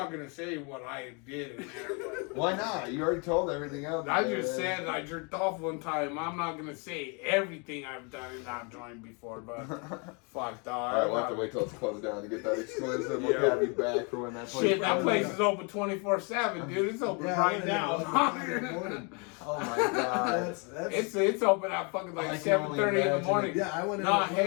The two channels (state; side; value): quieter; right; 33.6 dB